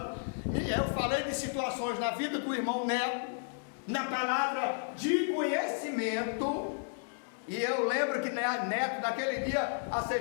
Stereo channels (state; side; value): silent; right; digital silence